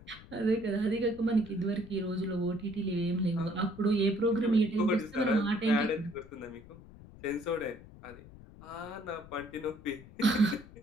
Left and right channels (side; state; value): left; noise; rumble, 19 dB below the sound